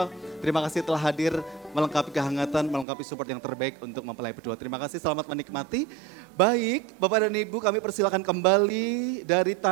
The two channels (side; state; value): left; drops out; at 2.9 s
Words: terima kasih telah hadir melengkapi kehangatan, melengkapi support yang terbaik untuk mempelai berdua. Terima kasih, selamat menikmati. Baik, Bapak dan Ibu, kami persilakan kembali dari